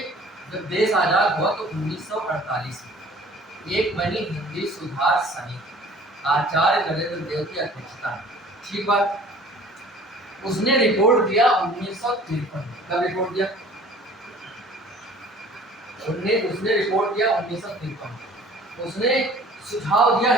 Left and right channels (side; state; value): both; normal; correlation 0.50